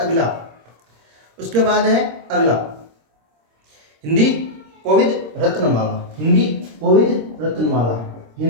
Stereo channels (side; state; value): left; late; 26 ms